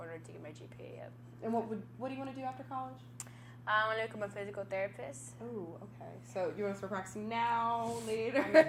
in order to get my GPA up. And what do you want to do after college? I want to become a physical therapist. Oh, okay. So you want to start practicing now, later? I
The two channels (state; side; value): identical; both; correlation 1.00